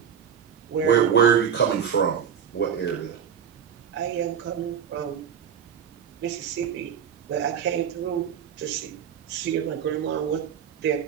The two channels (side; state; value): left; quieter; 8.0 dB